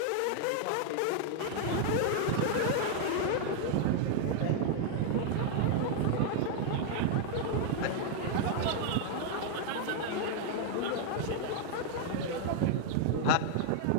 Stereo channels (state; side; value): different; both; correlation 0.00